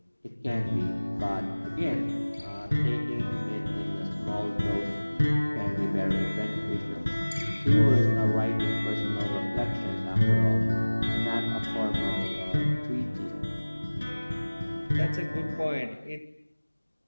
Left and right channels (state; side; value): inverted; both; correlation -1.00